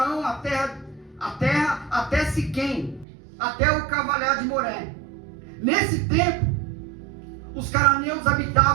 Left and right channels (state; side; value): drops out; left; at 3.1 s